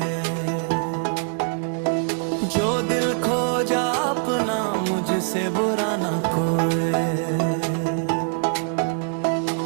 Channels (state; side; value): silent; left; digital silence